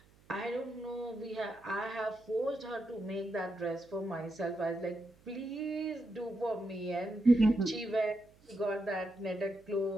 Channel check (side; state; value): right; noise; hum, 28 dB below the sound